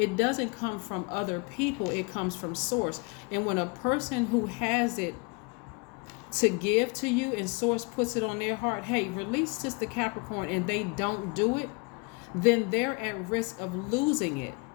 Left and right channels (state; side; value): quieter; right; 31.1 dB